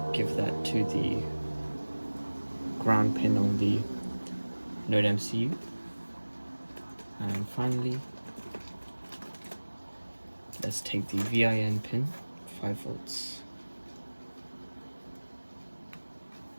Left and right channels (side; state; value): both; inverted; correlation -1.00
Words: give that to the ground pin on the Node MCU. And finally, let's take the VIN pin, 5V.